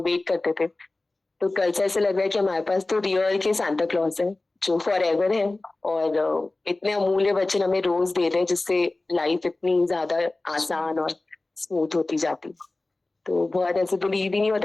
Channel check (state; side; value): quieter; right; 3.0 dB